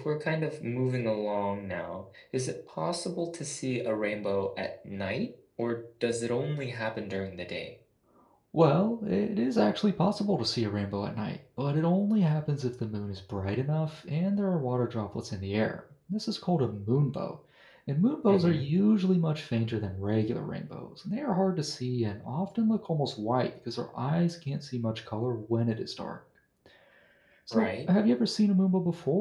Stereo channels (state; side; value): identical; both; correlation 1.00